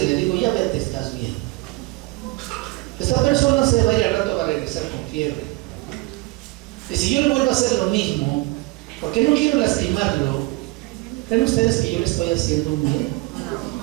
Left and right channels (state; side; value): quieter; left; 22.3 dB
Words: le digo: ya vete, estás bien. Esta persona se va a ir al rato, va a regresar con fiebre. Y si yo le vuelvo a hacer lo mismo, porque no quiero lastimarlo, ¿creen ustedes que yo le estoy haciendo un bien?